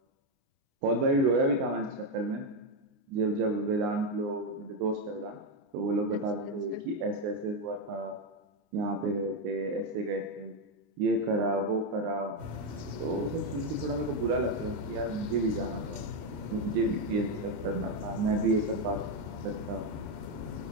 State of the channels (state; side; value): late; left; 29 ms